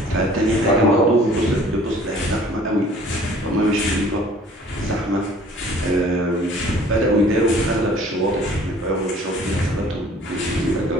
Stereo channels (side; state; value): both; normal; correlation 0.52